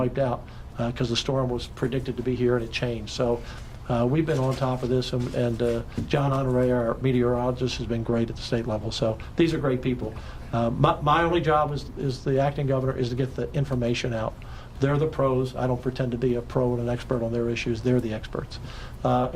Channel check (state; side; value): identical; both; correlation 1.00